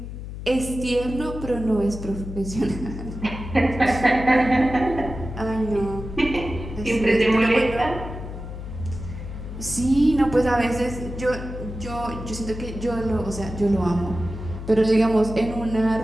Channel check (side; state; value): left; noise; hum, 9 dB below the sound